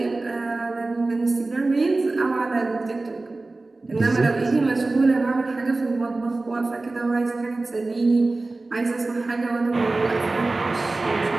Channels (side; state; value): left; quieter; 3.3 dB